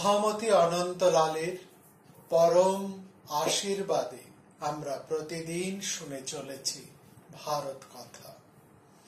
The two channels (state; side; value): identical; both; correlation 1.00